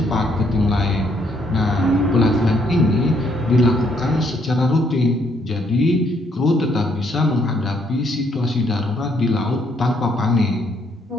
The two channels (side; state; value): both; normal; correlation 0.70